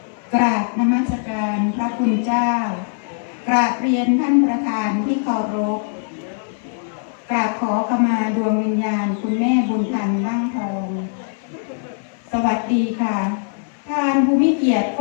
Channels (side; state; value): right; silent; 60 dB below the other